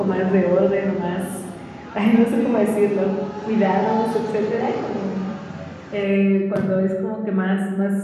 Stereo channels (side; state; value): both; identical; correlation 1.00